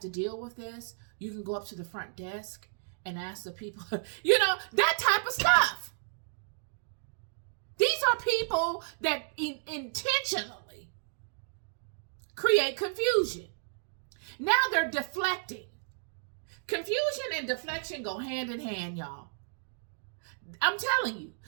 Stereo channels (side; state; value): left; silent; digital silence